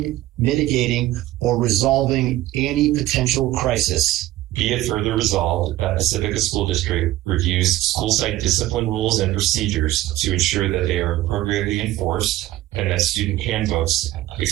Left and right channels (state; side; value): quieter; left; 15.7 dB